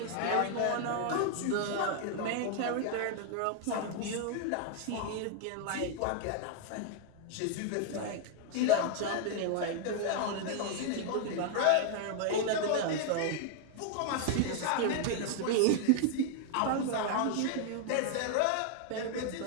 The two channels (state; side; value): different; both; correlation 0.00